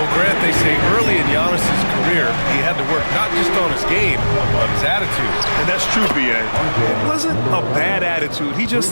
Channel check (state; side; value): inverted; both; correlation -1.00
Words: Grant, they say early in Giannis' career, he had to work not just on his game, but his attitude. And that's true, B.A. It wasn't a bad attitude. He